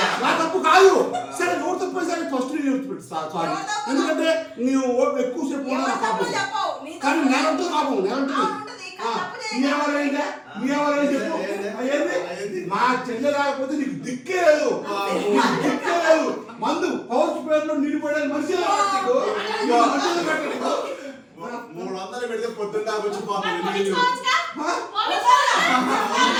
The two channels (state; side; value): identical; both; correlation 1.00